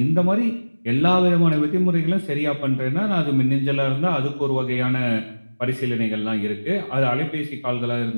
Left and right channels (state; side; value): inverted; both; correlation -1.00